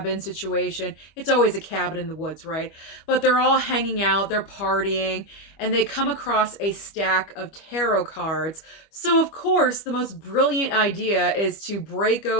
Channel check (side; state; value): right; late; 25 ms